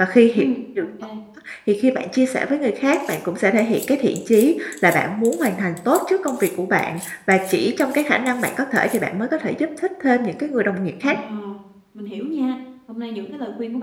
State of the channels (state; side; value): identical; both; correlation 1.00